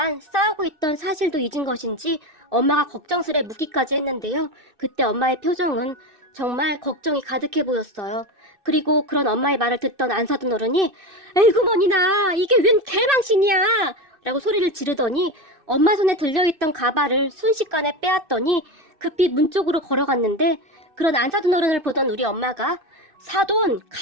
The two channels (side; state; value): left; late; 2.6 ms